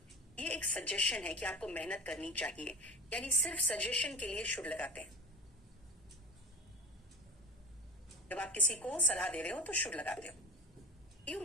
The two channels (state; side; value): normal; both; correlation 0.32